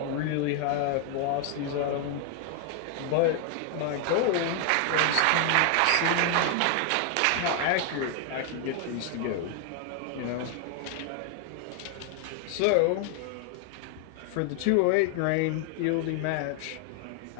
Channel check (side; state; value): both; different; correlation 0.00